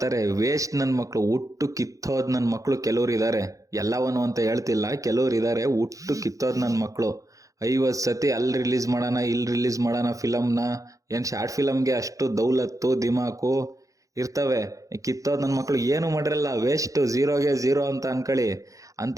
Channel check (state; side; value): late; left; 0.16 ms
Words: ವೇಸ್ಟ್ ನನ್ನ ಮಕ್ಕಳು, ಹುಟ್ಟು ಕಿತ್ತೋದು ನನ್ನ ಮಕ್ಕಳು ಕೆಲವ್ರು ಇದ್ದಾರೆ. ಎಲ್ಲವನು ಅಂತ ಹೇಳ್ತಿಲ್ಲ, ಕೆಲವ್ರು ಇದ್ದಾರೆ ಹುಟ್ಟು ಕಿತ್ತೋದು ನನ್ನ ಮಕ್ಕಳು. 50 ಸತಿ ಅಲ್ಲಿ ರಿಲೀಸ್ ಮಾಡೋಣ ಇಲ್ಲಿ ರಿಲೀಸ್ ಮಾಡೋಣ ಫಿಲಮ್ನ. ಏನು ಶಾರ್ಟ್ ಫಿಲಮ್ಗೆ ಅಷ್ಟು ದೌಲತ್ತು ದಿಮಾಕು ಇರ್ತವೆ. ಕಿತ್ತೋದು ನನ್ನ ಮಕ್ಕಳು ಏನು ಮಾಡಿರಲ್ಲ, ವೇಸ್ಟ್, ಝೀರೋಗೆ ಝೀರೋ ಅಂತ ಅನ್ಕೊಳ್ಳಿ. ಅಂತ